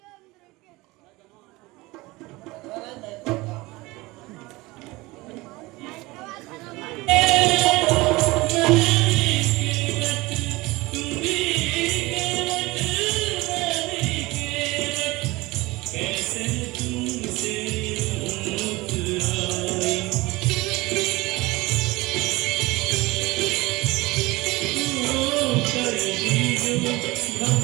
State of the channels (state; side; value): quieter; left; 21.6 dB